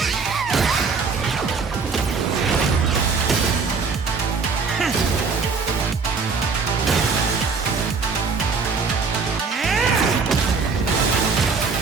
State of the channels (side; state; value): left; quieter; 4.9 dB